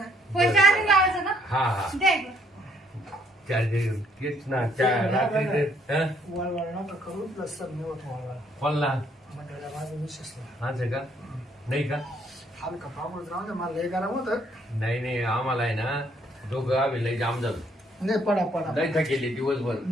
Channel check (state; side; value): normal; both; correlation 0.67